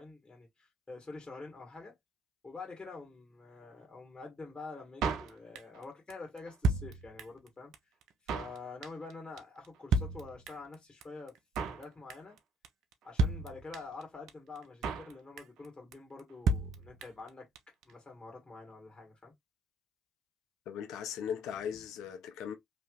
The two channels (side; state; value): both; normal; correlation 0.62